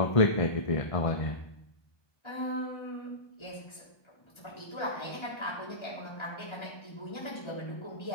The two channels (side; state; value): right; late; 1.3 ms